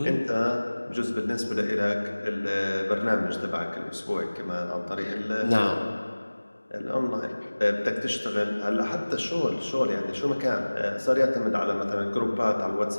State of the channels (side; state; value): both; inverted; correlation -1.00